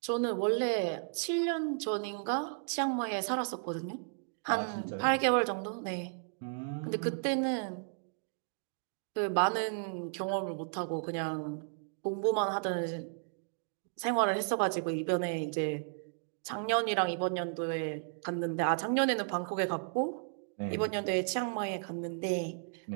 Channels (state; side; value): silent; left; digital silence